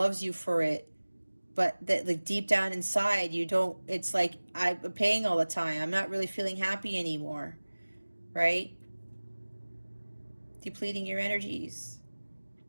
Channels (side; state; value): both; inverted; correlation -1.00